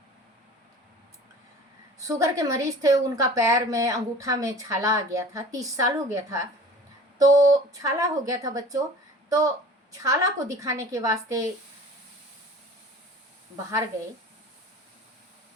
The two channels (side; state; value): both; normal; correlation 0.43